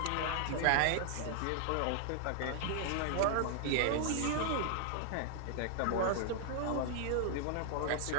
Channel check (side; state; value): both; different; correlation 0.00